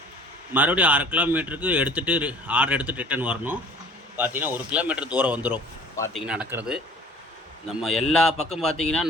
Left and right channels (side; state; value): both; normal; correlation 0.48